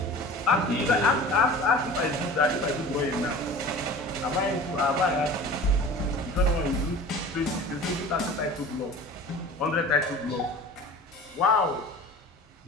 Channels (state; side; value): normal; both; correlation 0.40